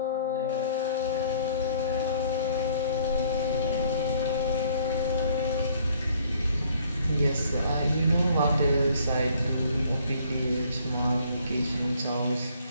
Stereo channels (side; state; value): both; inverted; correlation -0.60